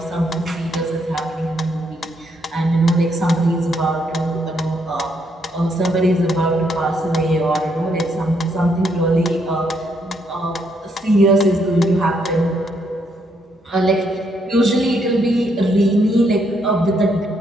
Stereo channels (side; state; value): both; normal; correlation 0.74